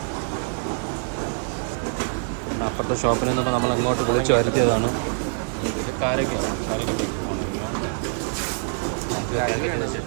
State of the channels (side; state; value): left; silent; 61 dB below the other